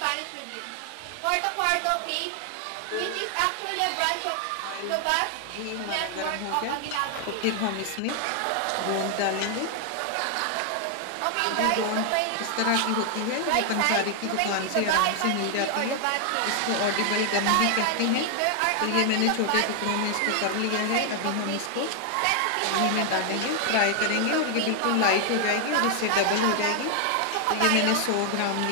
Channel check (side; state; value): both; different; correlation 0.00